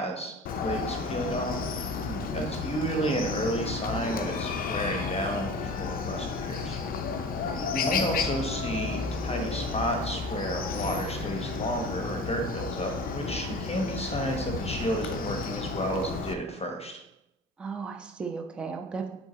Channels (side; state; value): both; normal; correlation 0.38